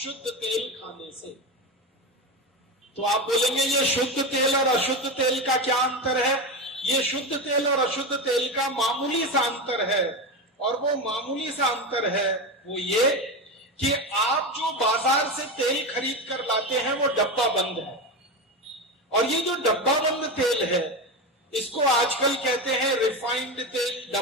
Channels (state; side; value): normal; both; correlation 0.19